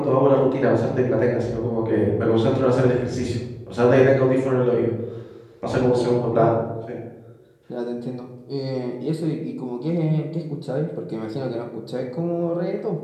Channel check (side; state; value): both; identical; correlation 1.00